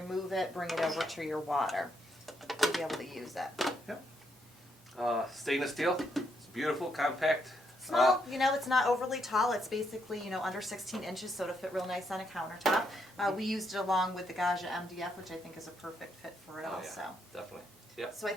it, bring it over to your water. You'll be able to use it. Yep. Stainless steel. It's beautiful, compact. Small, you know, it's not overly tall. It's basically, you know, under 16 inches, so it'll fit real nice on a countertop. We used it along with the Gaggia MDF, which I think is a perfect fit for it also. Yeah, definitely. Yep. So I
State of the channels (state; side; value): normal; both; correlation 0.77